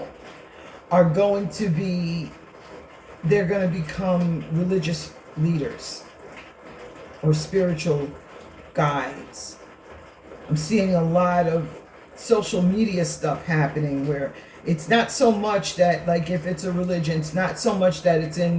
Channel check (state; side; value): identical; both; correlation 1.00